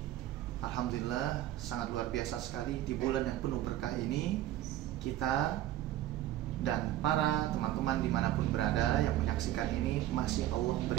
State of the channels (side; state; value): left; quieter; 13.8 dB